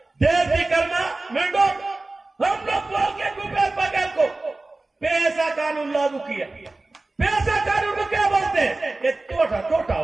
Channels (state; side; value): quieter; left; 3.1 dB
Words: देश की करना मेंढो, हम लोग बोल के भूपेश बघेल को पैसा कानून लागू किया। पैसा छोटा